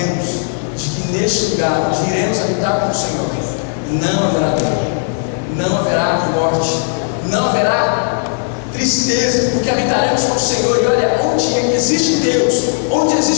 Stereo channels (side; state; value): right; silent; 69 dB below the other